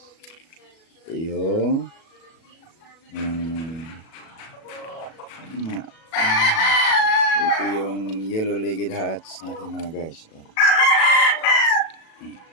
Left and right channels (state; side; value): late; right; 37 ms